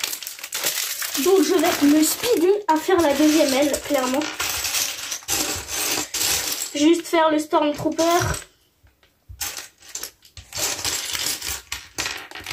Donc je vais me speeder à faire la deuxième aile, clairement. Juste faire le Stormtrooper.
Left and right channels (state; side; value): identical; both; correlation 1.00